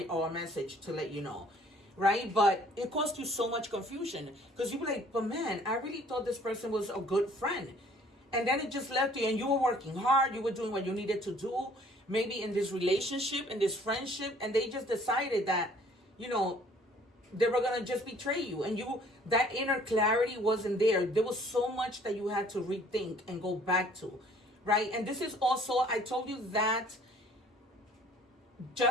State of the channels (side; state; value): both; normal; correlation 0.56